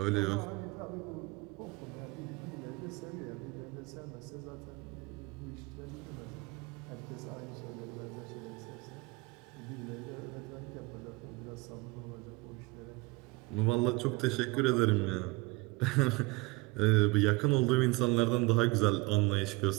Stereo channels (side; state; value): left; quieter; 24.6 dB